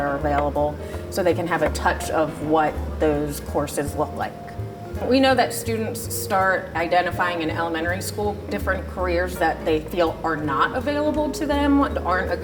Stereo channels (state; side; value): identical; both; correlation 1.00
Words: available so they can have a touch of what those courses look like. We know that students start identifying in elementary school different careers that they feel are not available to them, aren't a